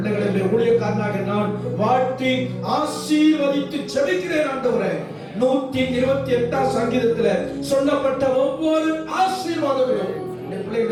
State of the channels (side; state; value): both; identical; correlation 1.00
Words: ஊழியக்காரனாக நான் வாழ்த்தி ஆசீர்வதித்து ஜெபிக்கிறேன். ஆண்டவரே, 128ஆம் சங்கீதத்தில் சொல்லப்பட்ட ஒவ்வொரு ஆசீர்வாதங்களும் இந்த